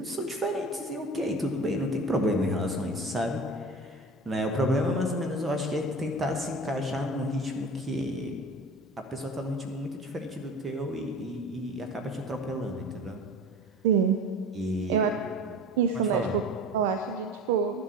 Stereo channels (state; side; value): normal; both; correlation 0.38